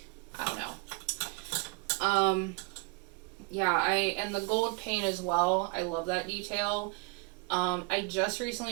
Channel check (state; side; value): quieter; left; 29.3 dB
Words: I don't know. Yeah, and the gold paint as well. I love that detail. I just